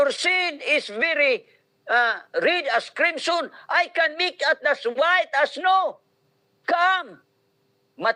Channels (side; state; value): both; identical; correlation 1.00